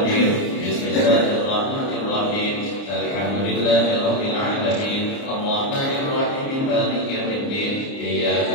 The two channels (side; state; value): right; late; 29 ms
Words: بسم الله الرحمن الرحيم. الحمد لله رب العالمين الرحمن الرحيم مالك يوم الدين إياك